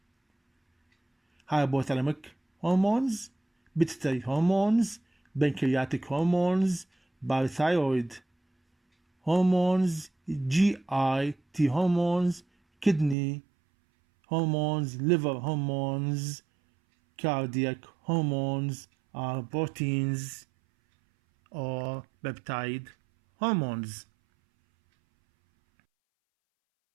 Hypothalamic hormones, pituitary hormones, pancreatic hormones, parathyroid hormones, GIT hormones, kidney hormones, liver hormones, cardiac hormones are proteins or peptide hormones.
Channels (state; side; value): drops out; left; at 13.2 s